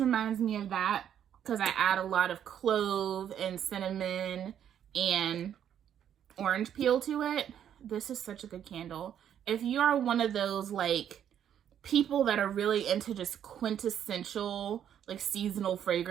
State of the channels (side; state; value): left; quieter; 9.6 dB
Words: me of that because I add a lot of clove and cinnamon and orange peel to it. This is such a good candle. If you are one of those like people that are really into just quintessential like seasonal